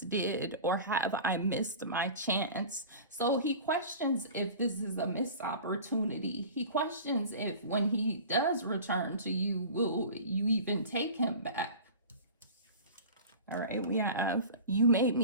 did, or have I missed my chance? So he questions if this is a missed opportunity. He questions if when he does return to you, will you even take him back? All right, we have, you made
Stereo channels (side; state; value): both; inverted; correlation -0.37